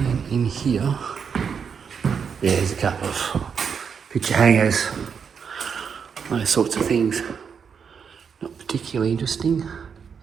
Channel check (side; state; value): left; quieter; 6.6 dB